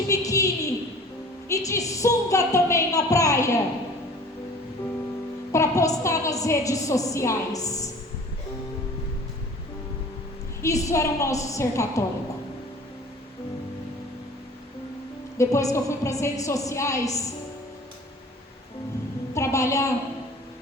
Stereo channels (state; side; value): normal; both; correlation 0.46